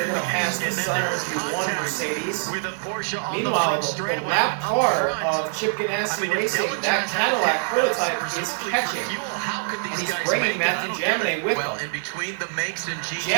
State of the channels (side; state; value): left; silent; digital silence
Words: going to pass the Sunners one Mercedes. Meanwhile, the lap car of Chip Ganassi Racing, that Cadillac prototype is catching. And he's bringing Matthew Jaminet with him. In between the makes and